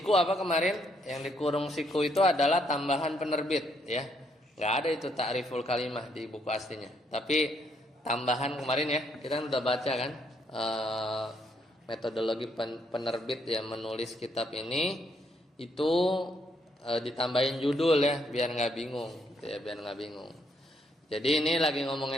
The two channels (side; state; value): both; normal; correlation 0.73